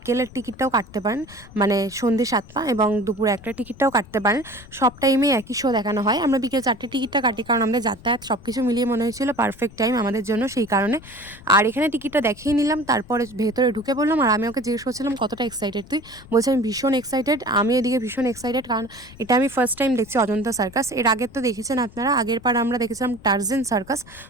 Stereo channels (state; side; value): noise; left; rumble, 20 dB below the sound